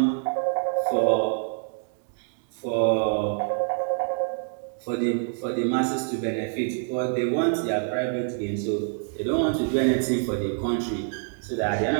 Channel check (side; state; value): left; silent; 61 dB below the other